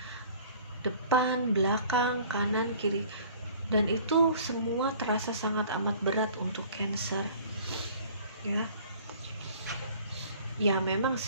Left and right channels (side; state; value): both; inverted; correlation -0.50